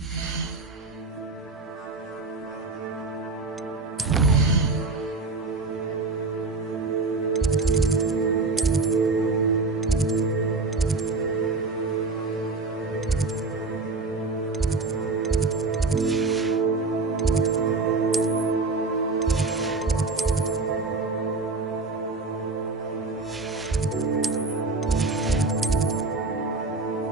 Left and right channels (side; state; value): left; quieter; 3.8 dB